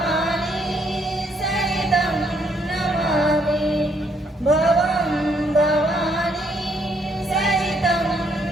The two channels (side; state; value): both; normal; correlation 0.70